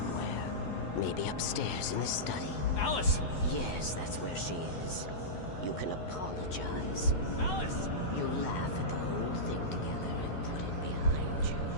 Maybe upstairs in the study. Alice! Yes, that's where she is. You can apologize. Alice! You laugh at the whole thing together and put it behind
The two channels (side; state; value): right; late; 12 ms